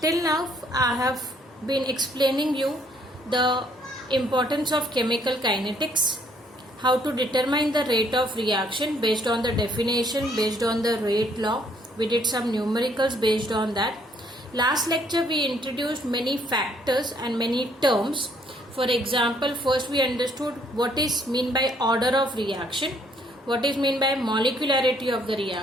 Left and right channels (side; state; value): both; normal; correlation 0.66